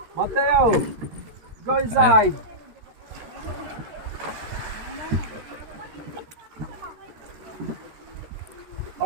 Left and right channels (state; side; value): late; left; 13 ms